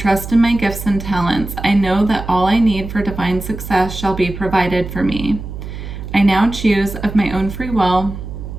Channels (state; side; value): noise; right; hum, 9 dB below the sound